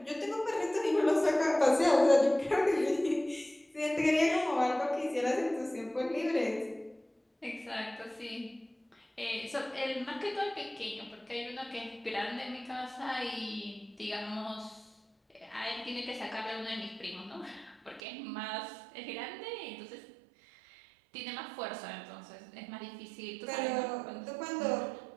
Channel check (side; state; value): left; drops out; at 18.0 s